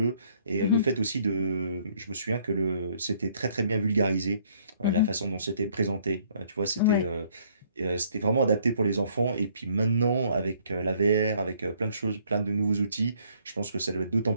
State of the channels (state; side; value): inverted; both; correlation -0.64